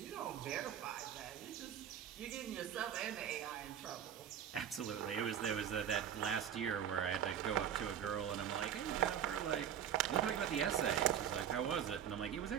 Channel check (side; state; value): left; quieter; 9.2 dB